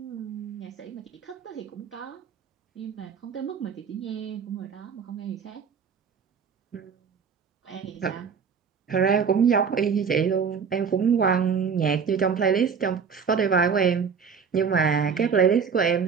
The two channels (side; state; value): left; quieter; 6.3 dB